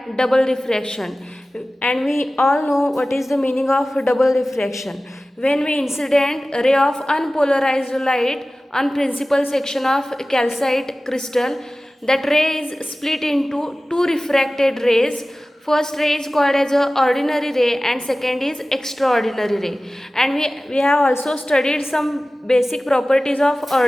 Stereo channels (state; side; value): normal; both; correlation 0.96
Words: double refraction, and we all know what is the meaning of double refraction. When we incident a ray of unpolarized light on principal section of calcite crystal, that ray is split into two refracted rays. First ray is called as a ordinary ray and second is extraordinary ray. And we have also studied some basic properties of